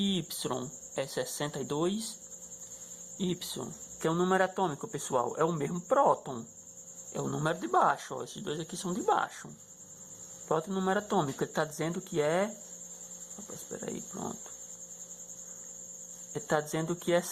Y é 62. Y, que é o número atômico, pessoal. É o mesmo próton. É o número de baixo. Ó. Esses dois aqui são de baixo. Próton número atômico. Ele está dizendo que é... Opa, espera aí, pronto. Ele está dizendo que é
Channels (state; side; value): identical; both; correlation 1.00